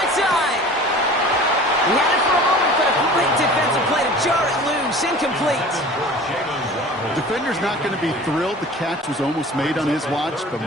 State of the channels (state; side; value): normal; both; correlation 0.42